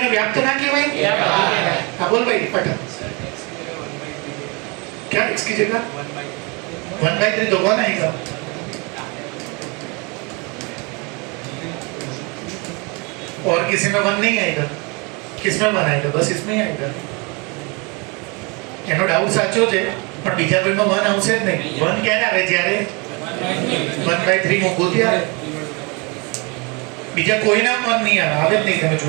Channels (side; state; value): left; quieter; 29.7 dB